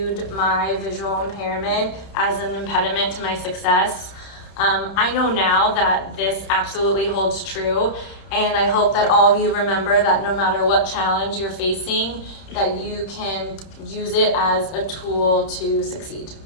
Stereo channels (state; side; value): late; right; 31 ms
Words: my visual impairment as an impediment to my success, I know now that this absolutely holds true, and I hope that all of you remember that no matter what challenge you're facing, that you can use it as a tool to succeed.